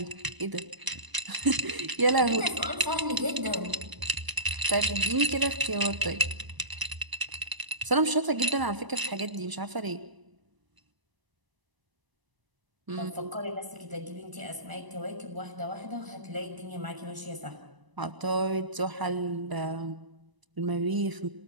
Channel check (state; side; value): late; left; 1.0 ms